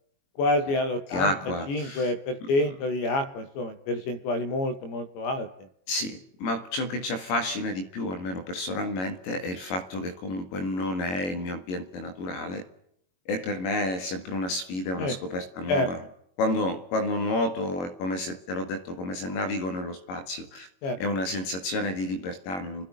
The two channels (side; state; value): right; late; 22 ms